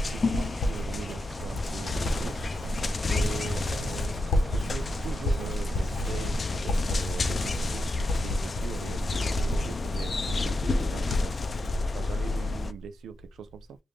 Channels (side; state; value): both; normal; correlation 0.87